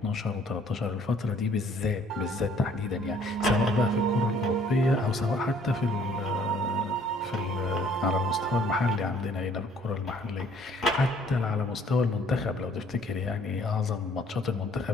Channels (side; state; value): both; normal; correlation 0.59